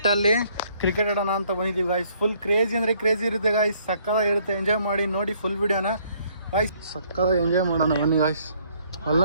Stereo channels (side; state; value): both; inverted; correlation -0.65